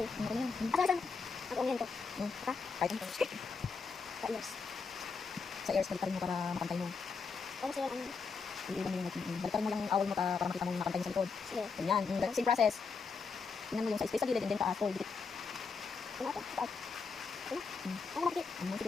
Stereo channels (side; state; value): right; quieter; 5.0 dB